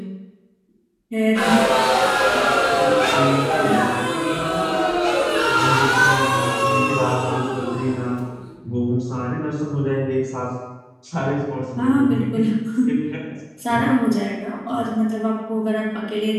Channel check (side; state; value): both; identical; correlation 1.00